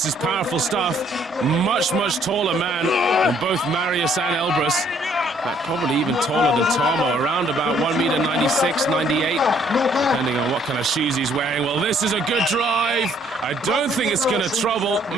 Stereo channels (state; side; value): normal; both; correlation 0.64